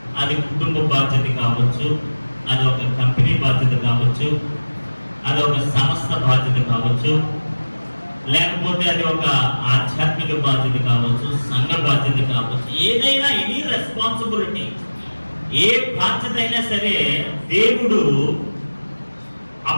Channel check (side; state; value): both; inverted; correlation -1.00